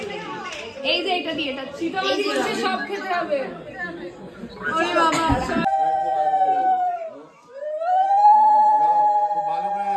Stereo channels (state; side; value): identical; both; correlation 1.00